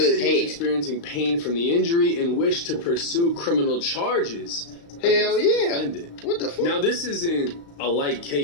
he was experiencing pain from the injury and wished to pursue criminal charges. Hell yeah. What the fuck? Now, this isn't a light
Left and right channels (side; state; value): right; late; 35 ms